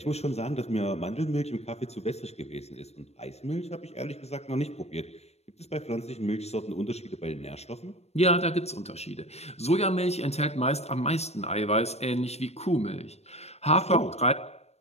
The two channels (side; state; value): right; late; 0.31 ms